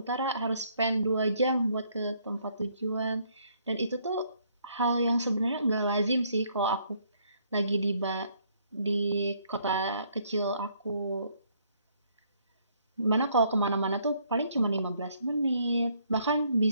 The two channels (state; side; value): inverted; both; correlation -0.67